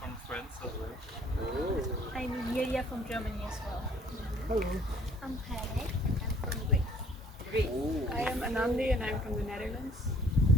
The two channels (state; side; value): normal; both; correlation 0.59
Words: France as well. I'm Yulia from Germany as well. Hello. I'm Haley. I'm from Greece. I am Anandi and I'm from the Netherlands.